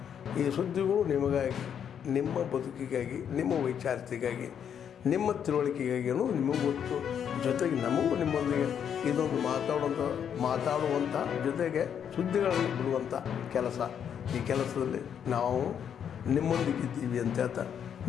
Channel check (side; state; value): right; quieter; 8.4 dB